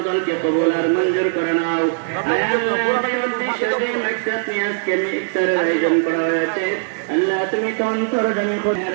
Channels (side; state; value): left; silent; 66 dB below the other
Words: দলকে কবুল আর মঞ্জুর করে নাও। ইফতারের আয়োজন করা হয়েছে, আল্লাহ তুমি তো অন্তর্জামী